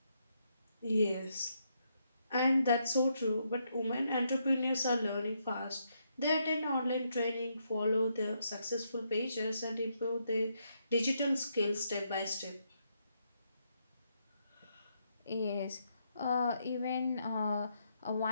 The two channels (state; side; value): inverted; both; correlation -0.78